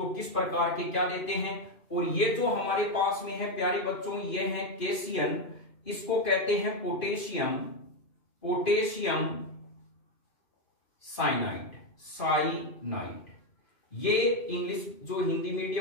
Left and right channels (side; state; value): right; late; 2.5 ms